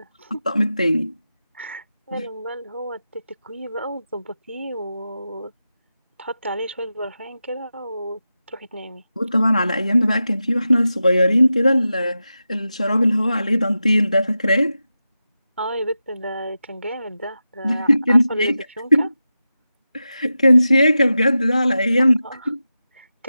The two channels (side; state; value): both; inverted; correlation -0.92